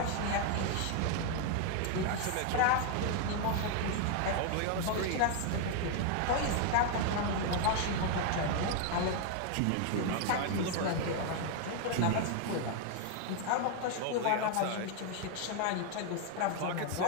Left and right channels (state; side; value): different; both; correlation 0.01